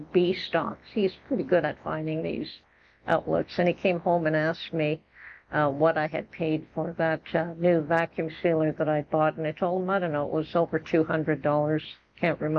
bee stocks. He's pretty good at finding these outlets, and he came home and asked me what I had paid for that new vacuum sealer that I bought, and I told him, I don't know, it was over $200. Can't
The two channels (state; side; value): identical; both; correlation 1.00